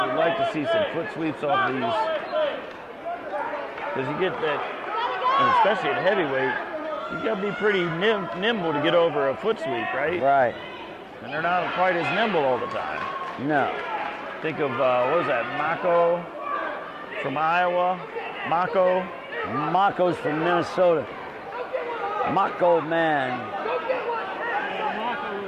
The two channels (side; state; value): both; identical; correlation 1.00